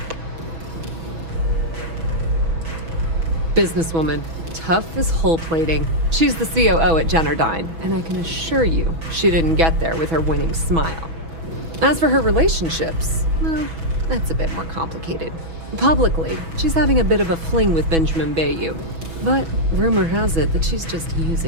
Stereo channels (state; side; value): late; left; 6.1 ms